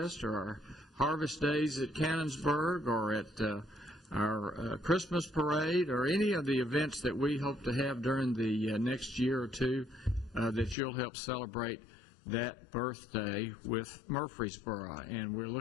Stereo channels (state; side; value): drops out; right; at 10.8 s